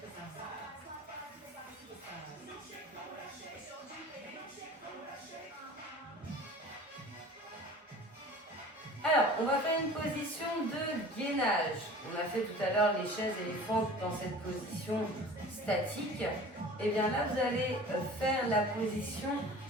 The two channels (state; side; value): normal; both; correlation 0.42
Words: Alors, on va faire une position de gainage. On a fait tout à l'heure les chaises éléphantes dans cette position statique. Et bien là, vous allez faire la position